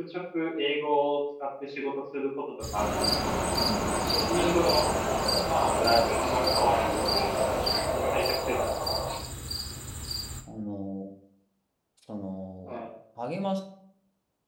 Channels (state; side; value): identical; both; correlation 1.00